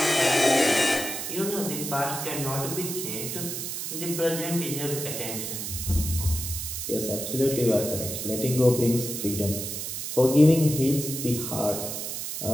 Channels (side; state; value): right; noise; hiss, 5 dB below the sound